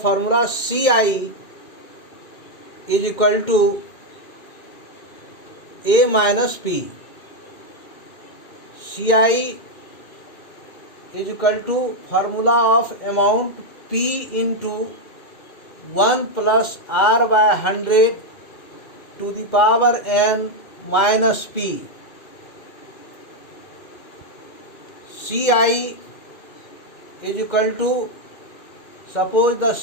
CI is equal to A minus P. CI is equal to formula of amount P into 1 plus R by 100 to the power n minus P. CI is equal to, suppose the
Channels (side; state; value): right; late; 2.1 ms